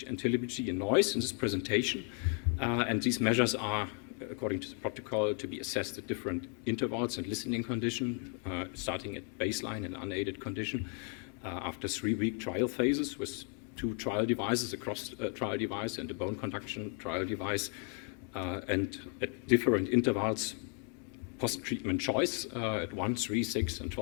intelligibility and noise in this presentation. And these measures are, according to the protocol, to be assessed at different intervals and listening condition, starting at baseline and unaided condition, after 3-week trial phases with two trial devices, a cross trial device and a bone conduction trial device, and at different intervals, post-treatment choice at 1, 3, 6, and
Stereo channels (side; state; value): right; quieter; 38.4 dB